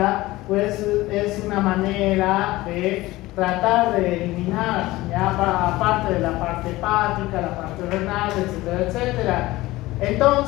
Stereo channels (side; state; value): right; quieter; 18.5 dB